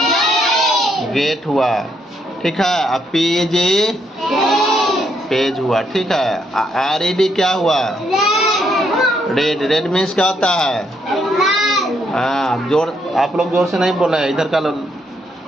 गेट हुआ, ठीक है। अब PEG, पेज हुआ, ठीक है। RED क्या हुआ? रेड, रेड मीन्स क्या होता है? जोर, आप लोग जोर से नहीं बोल रहे, इधर का लोग।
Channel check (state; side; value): normal; both; correlation 0.75